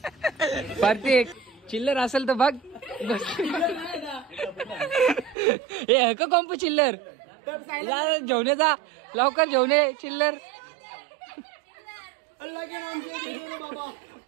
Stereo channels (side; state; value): left; drops out; at 5.4 s